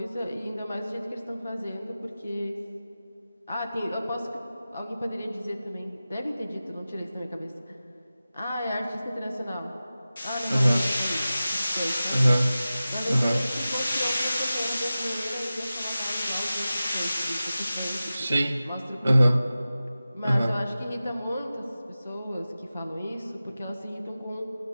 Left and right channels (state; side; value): inverted; both; correlation -0.95